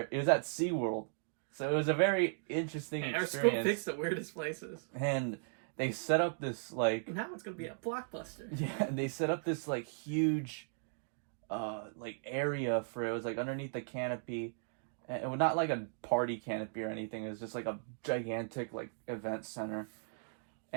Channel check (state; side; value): silent; left; digital silence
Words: It was at SeaWorld. So it was a very interesting Our experience. school picks the weirdest places. And they set up this like... Now it's going to be a blockbuster. Yeah, they set up this like huge like area for it. It was like underneath the canopy. And it was not like a party canopy or anything. It was just like a gigantic like event center.